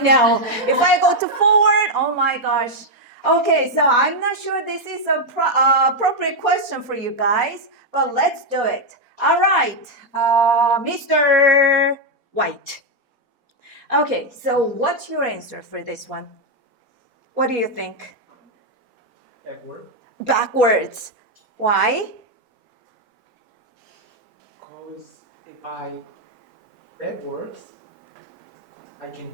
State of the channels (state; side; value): late; left; 4.2 ms